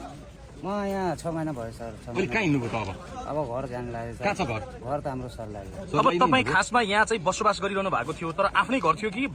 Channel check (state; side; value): identical; both; correlation 1.00